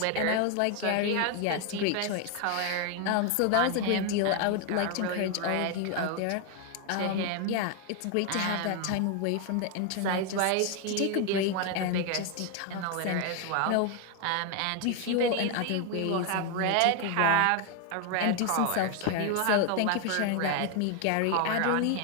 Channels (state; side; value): different; both; correlation 0.01